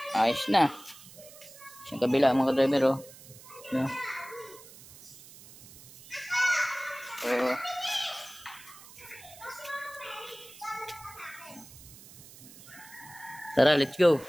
Ayos na. Yung kabila mga ka-driver o. Ayan. So, tara, let's go.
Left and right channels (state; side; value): noise; right; hiss, 19 dB below the sound